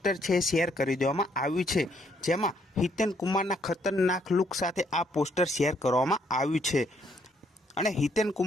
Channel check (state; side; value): normal; both; correlation 0.70